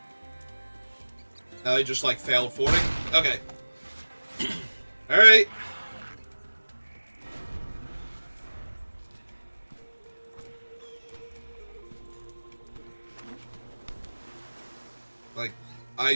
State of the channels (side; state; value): both; inverted; correlation -1.00